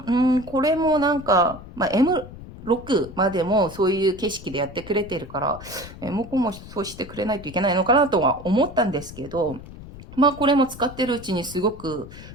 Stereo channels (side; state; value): left; noise; rumble, 15 dB below the sound